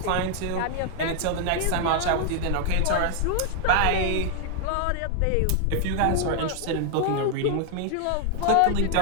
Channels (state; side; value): different; both; correlation 0.00